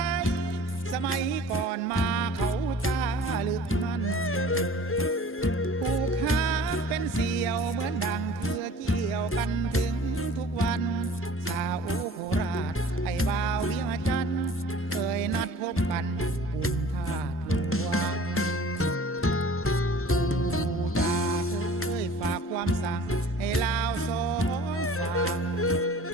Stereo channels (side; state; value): both; normal; correlation 0.46